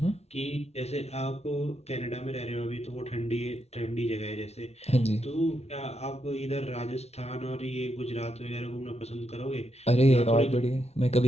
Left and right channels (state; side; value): late; right; 0.31 ms